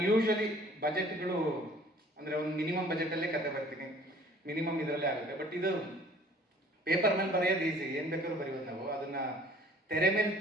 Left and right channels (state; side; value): normal; both; correlation 0.53